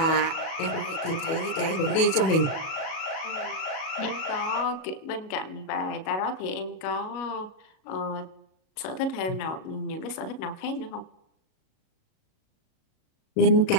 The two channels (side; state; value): right; late; 37 ms